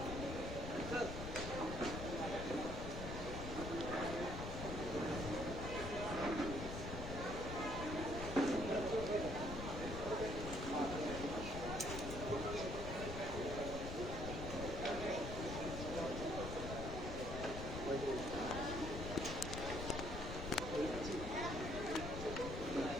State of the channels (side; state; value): left; noise; rumble, 5 dB below the sound